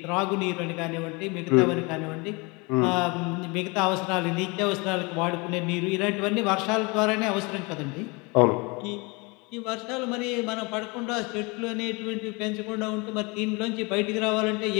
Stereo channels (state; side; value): quieter; right; 27.8 dB